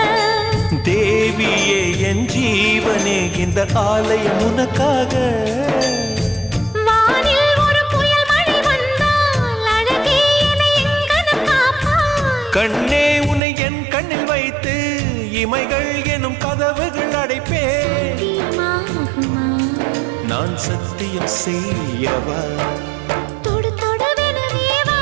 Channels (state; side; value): drops out; left; at 13.4 s